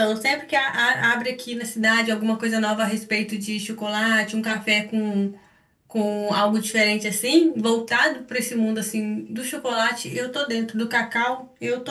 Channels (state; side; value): identical; both; correlation 1.00